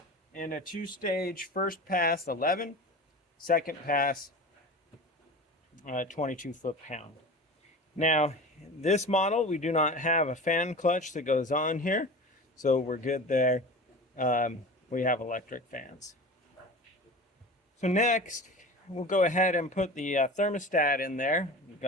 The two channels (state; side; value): normal; both; correlation 0.34